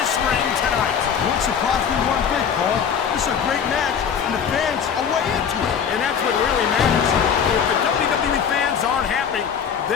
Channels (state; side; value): quieter; right; 7.4 dB